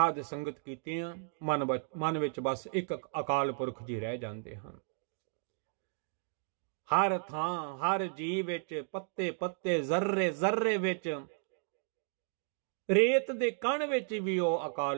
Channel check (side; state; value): left; silent; digital silence